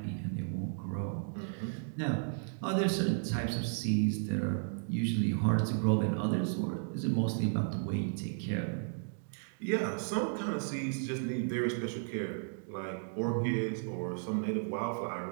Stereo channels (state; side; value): silent; left; digital silence